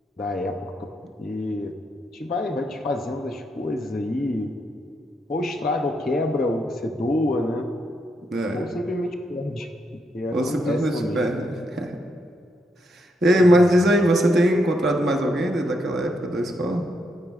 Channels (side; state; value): both; normal; correlation 0.79